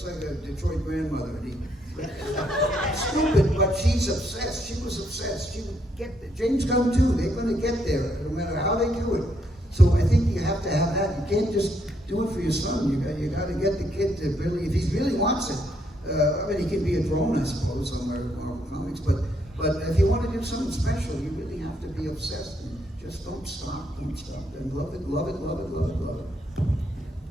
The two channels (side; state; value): both; normal; correlation 0.74